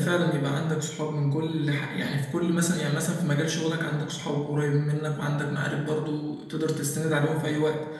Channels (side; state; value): both; identical; correlation 1.00